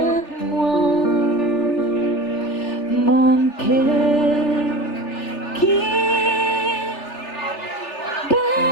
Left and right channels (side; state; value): right; late; 3.4 ms